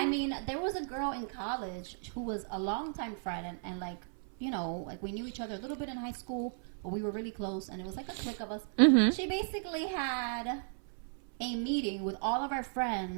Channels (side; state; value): left; silent; 54 dB below the other